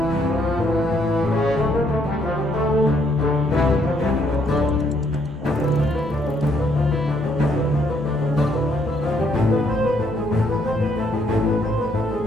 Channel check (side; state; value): both; normal; correlation 0.70